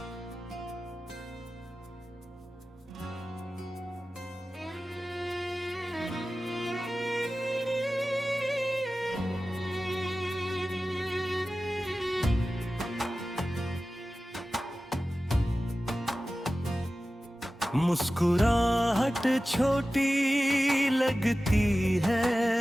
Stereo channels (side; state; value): both; normal; correlation 0.95